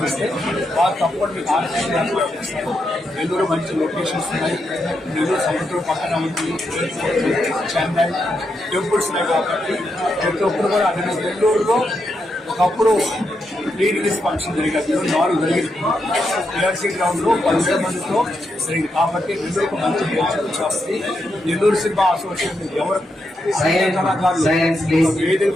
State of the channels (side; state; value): both; normal; correlation 0.83